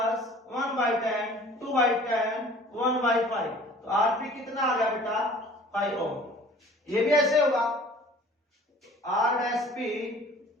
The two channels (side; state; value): both; normal; correlation 0.49